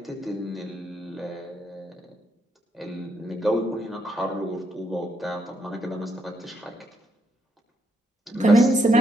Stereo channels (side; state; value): both; normal; correlation 0.76